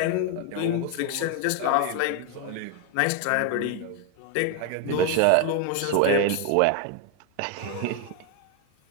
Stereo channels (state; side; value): different; both; correlation 0.01